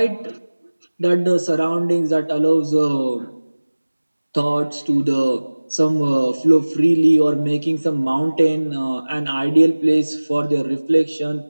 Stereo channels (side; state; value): both; inverted; correlation -1.00